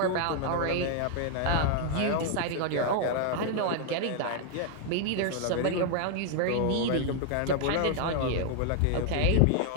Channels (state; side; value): different; both; correlation 0.00